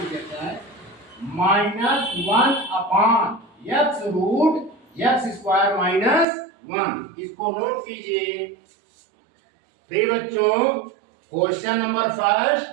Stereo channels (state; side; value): drops out; left; at 6.2 s